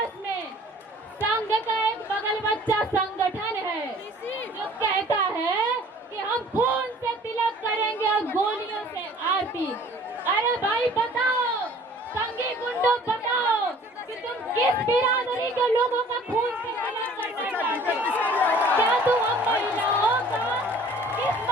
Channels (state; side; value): normal; both; correlation 0.51